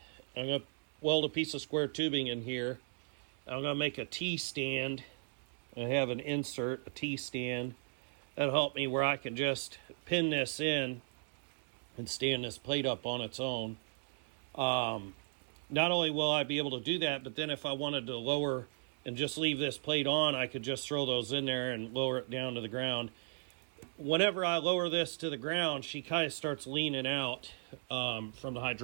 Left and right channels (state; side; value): silent; left; 54 dB below the other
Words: I'm going to weld a piece of square tubing in here. I'm going to make a T-stand. I have an insert, a T-stand. That'll help me where I can just pin this in and stand this plate up on its own. Not only will I be able to do that, but then if I wanted to lower and just leave this plate on, I could just throw those in there and lower it down to the ground. whenever I lower this to the ground, she kind of starts leaning out from the